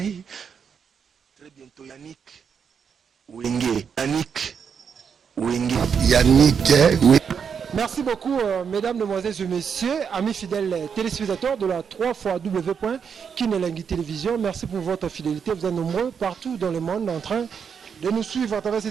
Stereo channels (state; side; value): quieter; left; 6.8 dB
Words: Très bientôt Yannick Wenge. Yannick Wenge. Merci beaucoup, mesdames, demoiselles et messieurs, amis fidèles téléspectateurs de la 3xW.Kinelengi Télévision. Merci pour votre fidélité. Vous êtes nombreux partout dans le monde en train de nous suivre à travers